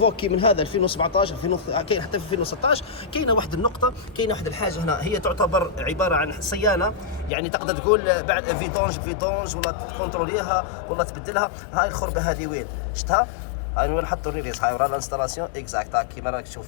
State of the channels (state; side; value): drops out; right; at 7.3 s